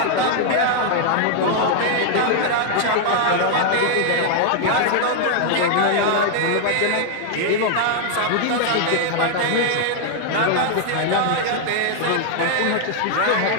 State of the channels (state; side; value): different; both; correlation 0.00